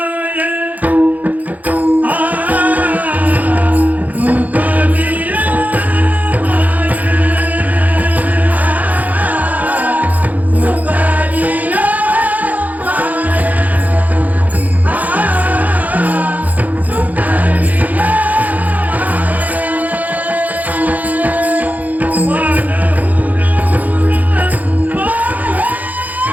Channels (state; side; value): late; left; 0.079 ms